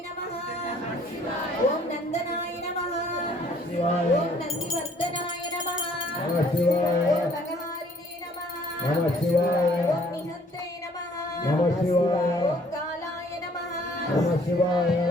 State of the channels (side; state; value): both; normal; correlation 0.60